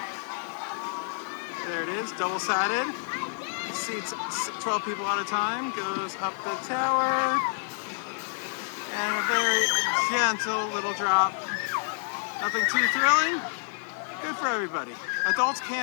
There it is, double-sided. Seats 12 people at a time, goes up the tower. And a very gentle little drop. Nothing too thrilling. Good for everybody. Adults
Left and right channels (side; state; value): right; silent; digital silence